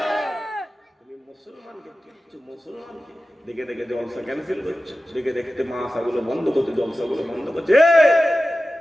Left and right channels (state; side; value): normal; both; correlation 0.95